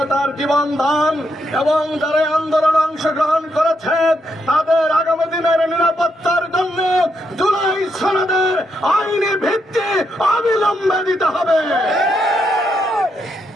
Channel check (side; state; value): both; normal; correlation 0.79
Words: জীবন দান এবং যারা আন্দোলনে অংশগ্রহণ করেছে তাদের আগামী দিনের নিরাপত্তার জন্য জুলাই সনদের আইনি ভিত্তি অবিলম্বে দিতে হবে।